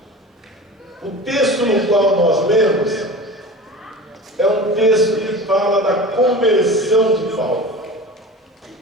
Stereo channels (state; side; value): normal; both; correlation 0.35